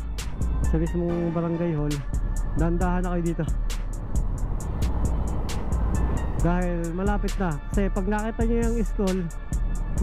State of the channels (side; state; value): both; identical; correlation 1.00